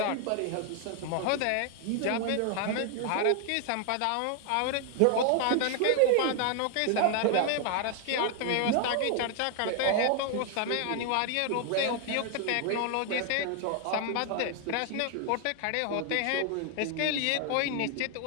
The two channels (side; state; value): both; different; correlation 0.00